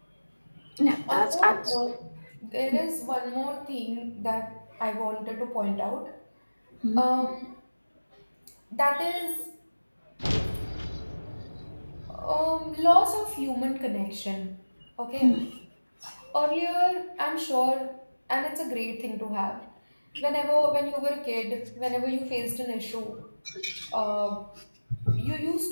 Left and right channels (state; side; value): inverted; both; correlation -1.00